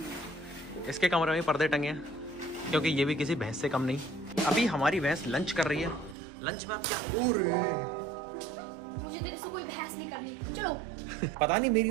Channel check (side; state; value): left; drops out; at 6.2 s